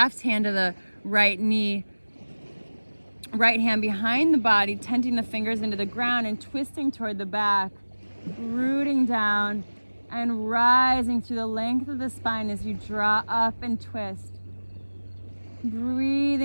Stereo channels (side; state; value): both; inverted; correlation -1.00